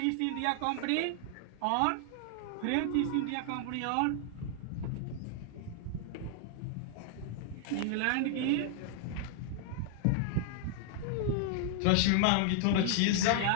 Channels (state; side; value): different; both; correlation 0.00